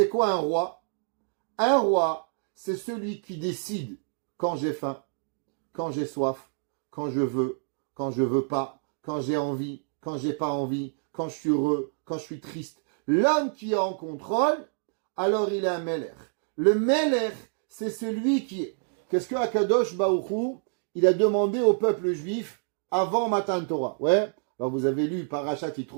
quoi un roi? Un roi, c'est celui qui décide quand j'ai faim, quand j'ai soif, quand je veux pas, quand j'ai envie, quand j'ai pas envie, quand je suis heureux, quand je suis triste. L'homme qui est en contrôle, alors il est un Meller. Le Meller, c'est celui qui est. Qu'est-ce que Akadosh Baruch Hu, il a demandé au peuple juif avant Matan Torah? Ouais. Alors vous avez lu Parashat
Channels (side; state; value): left; silent; digital silence